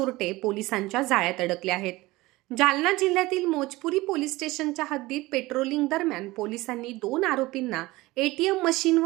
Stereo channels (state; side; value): quieter; left; 20.0 dB